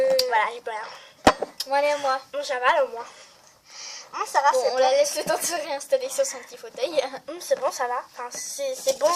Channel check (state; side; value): identical; both; correlation 1.00